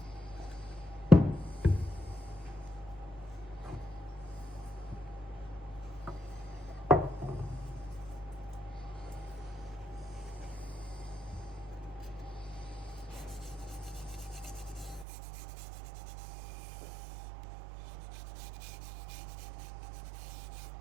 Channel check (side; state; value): left; drops out; at 15.1 s